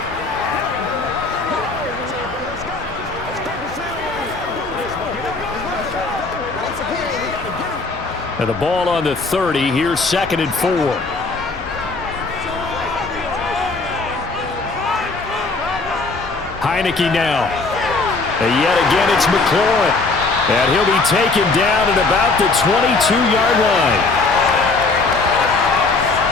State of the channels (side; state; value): right; quieter; 3.7 dB